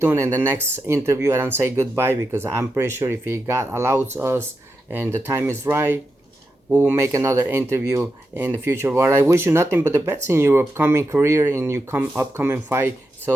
in the next interview. I don't say goodbye because I'm pretty sure if he God allows us and the time is right, we will make another interview in the future. But I wish you nothing but the best in your upcoming career, in your upcoming fight.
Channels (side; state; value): both; normal; correlation 0.88